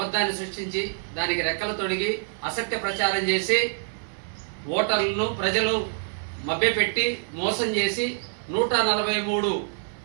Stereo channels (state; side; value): silent; left; 61 dB below the other